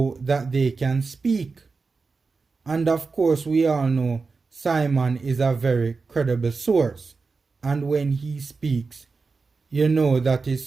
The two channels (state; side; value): quieter; left; 4.4 dB